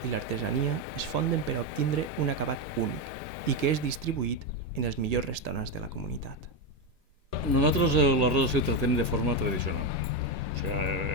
i l'artesania es fonden per a obtindre un acabat únic i que és distribuït en els millors restaurants de la comunitat. Nosaltres l'arròs el tratem de forma tradicional. O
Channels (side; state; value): both; normal; correlation 0.09